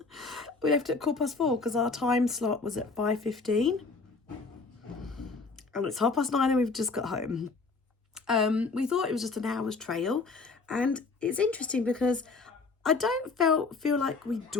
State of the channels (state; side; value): quieter; right; 4.1 dB